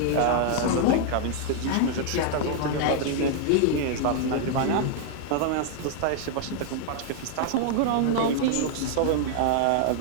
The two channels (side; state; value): both; different; correlation 0.00